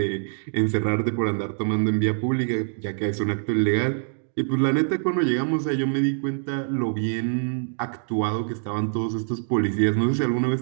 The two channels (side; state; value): left; silent; digital silence